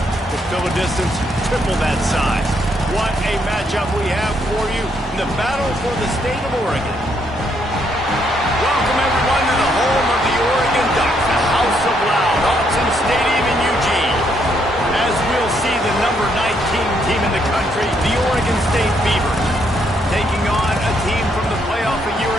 could fill a distance triple that size. What a matchup we have for you in the battle for the state of Oregon. Welcome everyone to the home of the Oregon Ducks, the House of Loud, Autzen Stadium in Eugene. As we'll see the number 19 team in the country, the Oregon State Beavers, taking on a team from the playoff a year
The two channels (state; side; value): normal; both; correlation 0.73